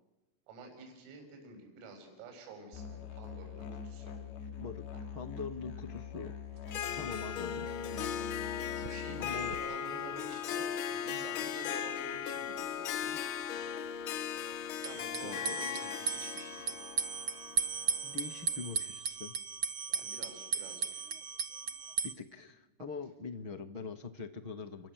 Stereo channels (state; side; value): late; left; 6.3 ms